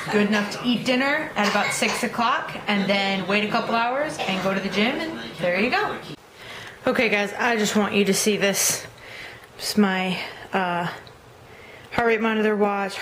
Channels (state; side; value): identical; both; correlation 1.00